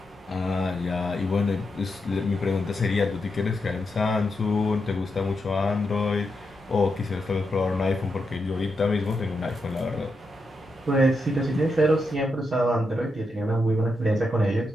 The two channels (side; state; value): both; normal; correlation 0.84